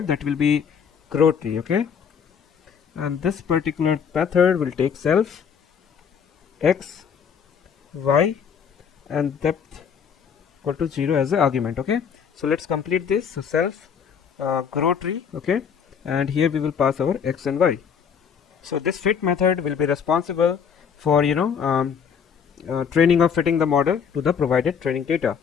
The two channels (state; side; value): quieter; right; 7.1 dB